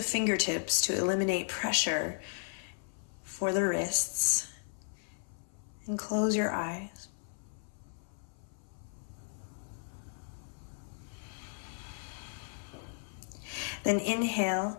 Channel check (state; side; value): silent; right; 54 dB below the other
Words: fingertips to eliminate pressure for the wrists. And close your eyes. Then